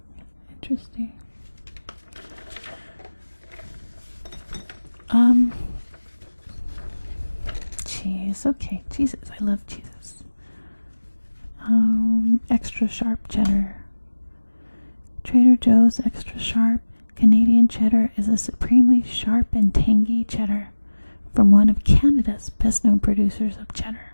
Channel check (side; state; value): both; inverted; correlation -1.00